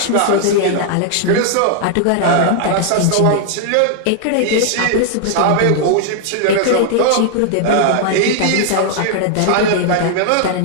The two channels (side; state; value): both; different; correlation 0.00